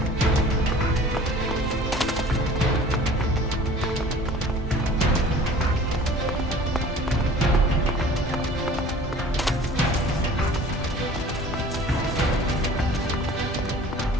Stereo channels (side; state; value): both; normal; correlation 0.46